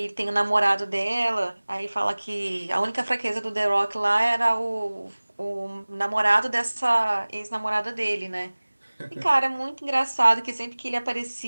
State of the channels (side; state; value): both; inverted; correlation -1.00